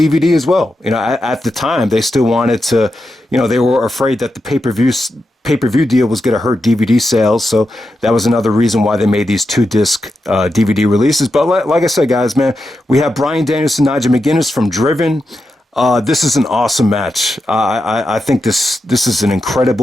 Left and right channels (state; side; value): normal; both; correlation 0.88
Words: as well. At the time, they still wanted to, they were afraid that the pay-per-view deal was going to hurt DVD sales, so that was another reason why they made these 2-disc DVD releases. But like I said, guys, man, we have Bryan Danielson, Nigel McGuinness from Driven. This is an awesome match. I think this is an